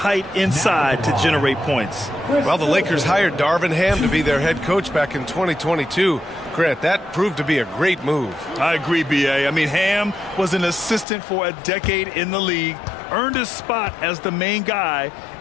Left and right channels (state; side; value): drops out; right; at 11.1 s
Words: inside to generate points. Well, the Lakers hired Darvin Ham to be their head coach back in 2022. Grant, that proved to be a great move. I agree, B.A. I mean, Ham was an assistant for a decade in the league, earned his spot as the main guy,